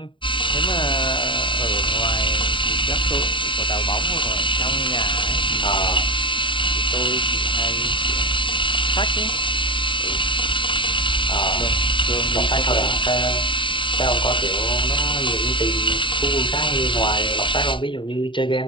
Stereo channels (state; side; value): late; right; 0.24 ms